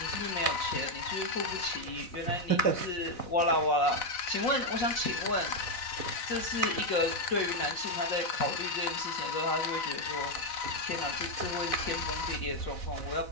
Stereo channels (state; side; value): late; right; 4.0 ms